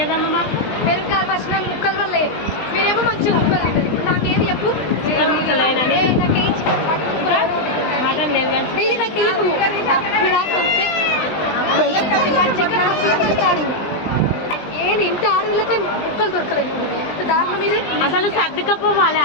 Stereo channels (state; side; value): late; right; 19 ms